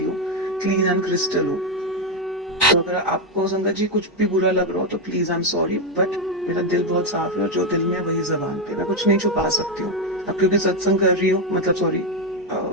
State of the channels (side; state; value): both; normal; correlation 0.06